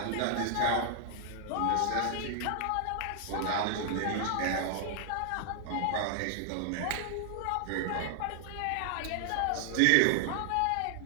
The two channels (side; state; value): both; different; correlation 0.00